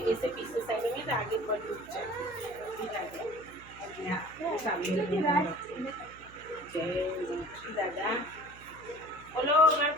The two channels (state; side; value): noise; right; hum, 20 dB below the sound